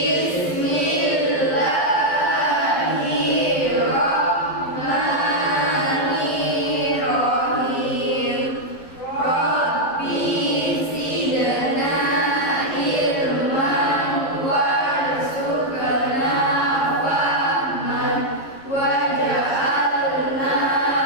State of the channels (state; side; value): late; right; 11 ms